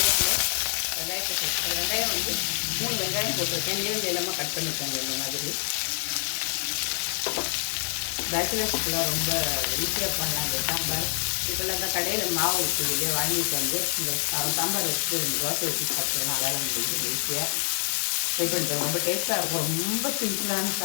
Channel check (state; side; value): silent; right; digital silence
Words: வெங்காயத்தை போட்டு வெங்காயம் 3 வெங்காயம் போட்டிருக்கேன். நீங்க எல்லாமே கட் பண்ணிக்கோங்க. இந்த மாதிரி பேச்சுலர்ஸ்க்குலாம் ரொம்ப ஈஸியாக பண்ணலாம் அந்த சாம்பார். இப்போல்லாம் இந்த கடையில் மாவு இருக்குது இல்லையா, வாங்கிட்டு இந்த சாம்பார் வச்சுட்டு தோசை ஊற்றி சாப்பிட்றோம். அதால் முடிஞ்சு ஈஸியாக ட்ரை பண்ணுறோம். ரொம்ப டேஸ்ட்டாக இருக்கும். ரொம்ப சிம்பிளான